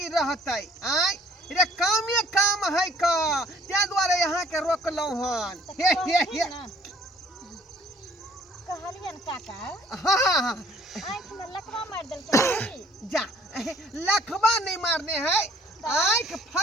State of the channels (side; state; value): both; normal; correlation 0.58